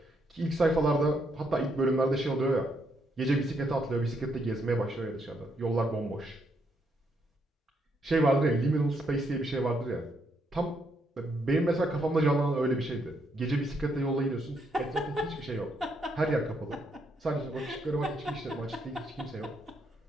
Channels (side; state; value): both; normal; correlation 0.75